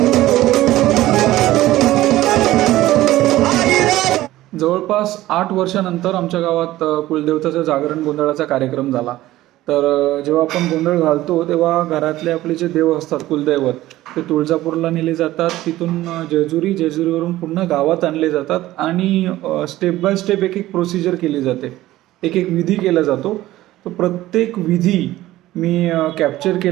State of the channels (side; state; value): left; quieter; 15.9 dB